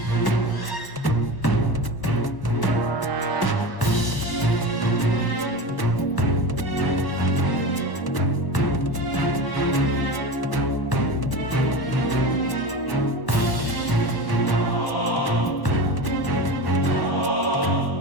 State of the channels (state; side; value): late; right; 1.1 ms